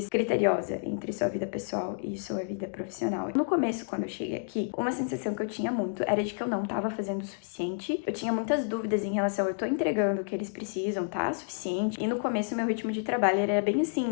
criteriosa entre sua vida pessoal e sua vida profissional. No começo, quando eu cheguei aqui, uma sensação que eu tinha muito era de que eu não estava fazendo o suficiente. Eu tinha muitas dúvidas em relação, eu tô entregando o que eles precisam, tá? Suficiente. E no começo, meu ritmo de trabalho era bem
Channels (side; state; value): right; silent; digital silence